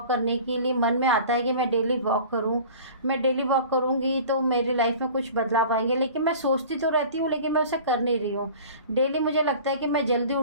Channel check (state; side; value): inverted; both; correlation -0.42